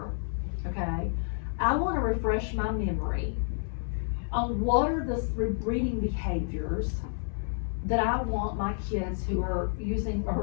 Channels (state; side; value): silent; right; 58 dB below the other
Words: okay? I wanna refresh my memory on what are the reading behaviors that I want my kids who are using